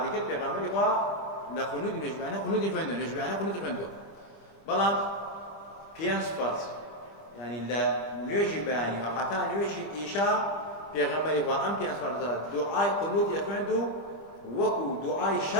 ذكر بيغمبر لخنود نجبانه خنود يخوندو نجبانه خنود يخوندو بلام بيانس فرز يعني لا نيجي بياني وحتى نيجي إيشا بيغمبري وأم بيانس فرز دعاء خنود يخوندو وكو دعاء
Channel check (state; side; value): late; right; 25 ms